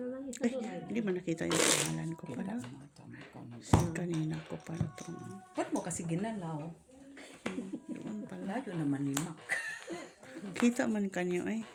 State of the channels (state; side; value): identical; both; correlation 1.00